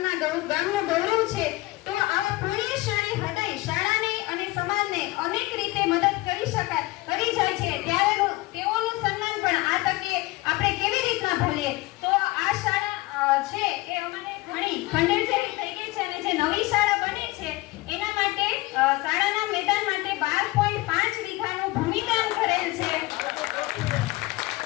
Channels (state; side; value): quieter; right; 20.5 dB